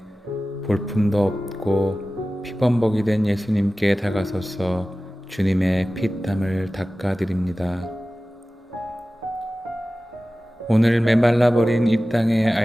볼품도 없고 피범벅이 된 예수님께 다가서서 주님의 피땀을 닦아드립니다. 오늘 메말라버린 이 땅의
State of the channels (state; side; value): normal; both; correlation 0.96